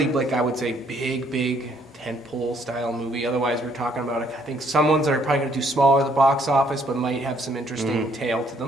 like, I would say, big tentpole style movie. Otherwise, we're talking about, I think, some ones that are probably going to do smaller at the box office, but might have some interesting tale to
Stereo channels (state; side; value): normal; both; correlation 0.66